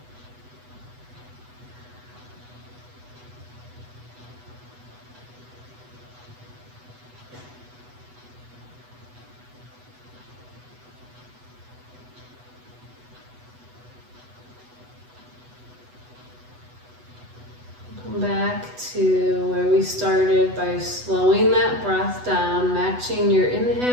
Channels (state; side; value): late; left; 8.1 ms